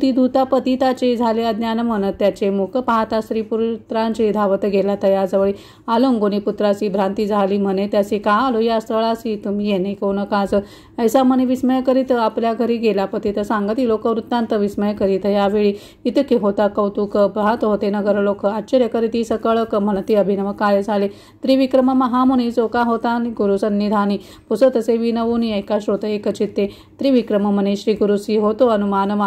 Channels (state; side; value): identical; both; correlation 1.00